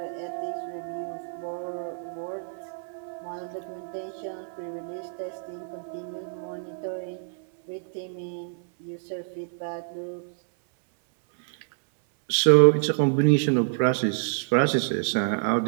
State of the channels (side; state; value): left; silent; 60 dB below the other